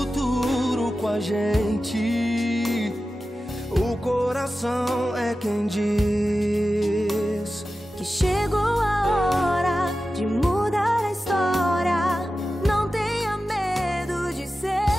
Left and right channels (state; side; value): normal; both; correlation 0.93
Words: com a gente, o coração é quem diz que chegou a hora de mudar a história. Não tenha medo de